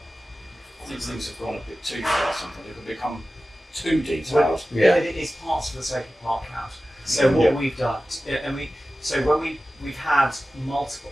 I think things have gone a bit too far sometimes. They can become too detailed. It's parts for the sake of part count. So what we've done, we've had multiple,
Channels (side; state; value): both; normal; correlation 0.95